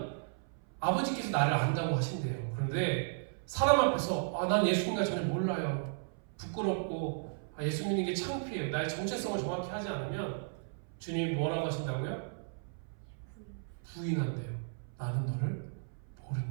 아버지께서 나를 안다고 하신대요. 그런데 사람 앞에서 난 예수님과 전혀 몰라요. 부끄럽고 예수 믿는 게 창피해요. 나의 정체성을 정확히 하지 않으면 주님이 뭐라고 하신다고요? 부인한대요. 나는 너를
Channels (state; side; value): silent; left; 55 dB below the other